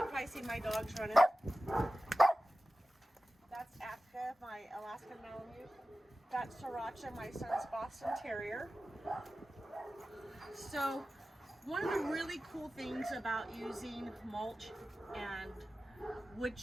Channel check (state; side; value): normal; both; correlation 0.95